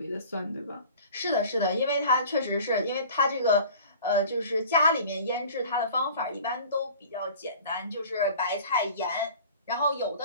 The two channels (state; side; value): inverted; both; correlation -0.44